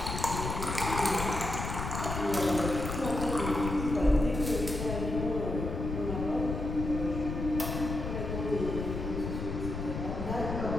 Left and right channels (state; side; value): noise; left; rumble, 4 dB below the sound